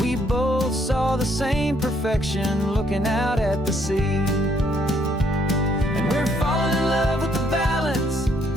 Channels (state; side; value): normal; both; correlation 0.69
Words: we both saw the same perfection looking out at the sea. And we're falling in love with the balance,